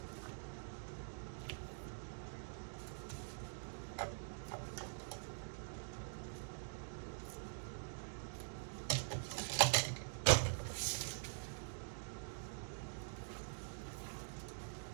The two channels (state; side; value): silent; left; digital silence